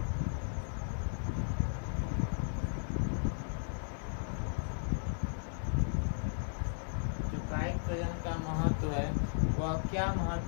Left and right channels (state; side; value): silent; right; 54 dB below the other